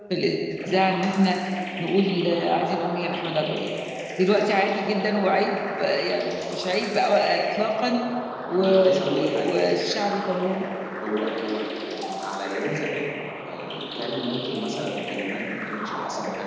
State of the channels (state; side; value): identical; both; correlation 1.00